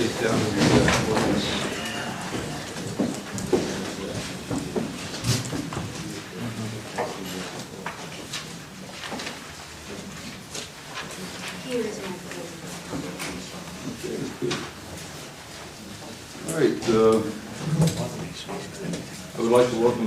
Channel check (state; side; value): identical; both; correlation 1.00